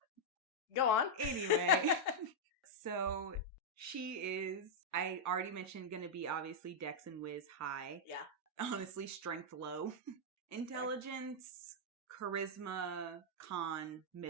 Go on. Anyway. So, she is, I already mentioned, going to be obviously Dex and Wiz high. Yeah. Honestly, strength low. Intelligence, charisma, con,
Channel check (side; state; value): both; normal; correlation -0.04